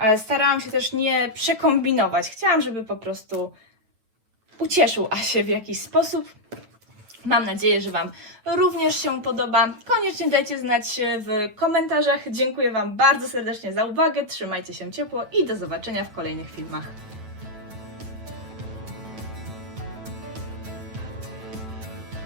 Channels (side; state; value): left; late; 9.1 ms